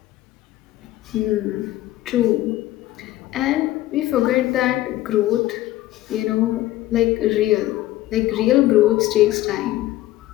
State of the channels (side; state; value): right; quieter; 15.6 dB